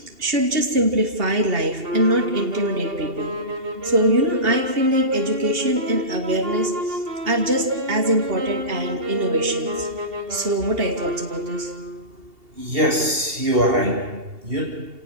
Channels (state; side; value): late; left; 2.8 ms